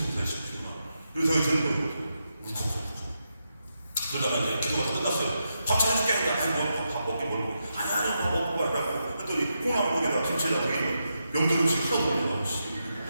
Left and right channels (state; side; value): inverted; both; correlation -0.85